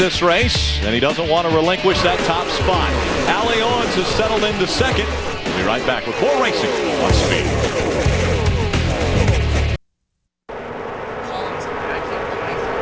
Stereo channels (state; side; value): identical; both; correlation 1.00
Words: race, and he doesn't want to relinquish that top spot. Allie Owens has settled into second. We'll be right back with more racing on Speed.